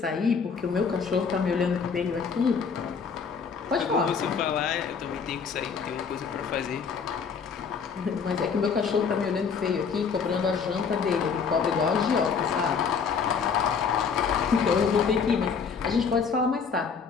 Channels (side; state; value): right; quieter; 5.9 dB